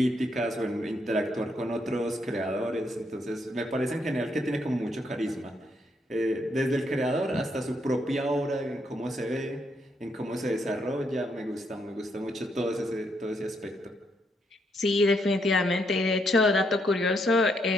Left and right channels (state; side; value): normal; both; correlation 0.75